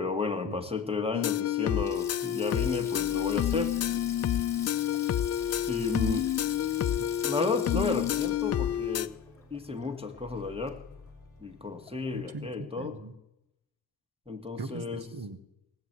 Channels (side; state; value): right; quieter; 7.1 dB